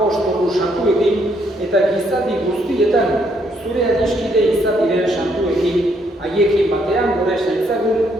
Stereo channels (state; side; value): normal; both; correlation 0.71